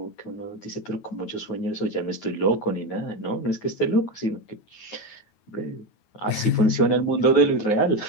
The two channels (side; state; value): right; late; 9.3 ms